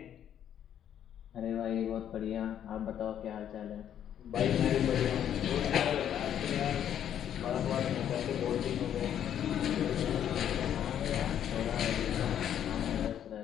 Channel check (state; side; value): quieter; right; 9.9 dB